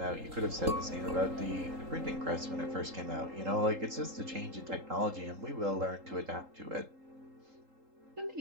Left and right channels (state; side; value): late; left; 3.8 ms